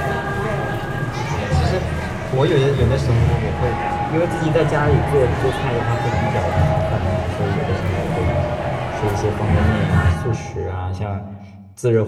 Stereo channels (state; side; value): identical; both; correlation 1.00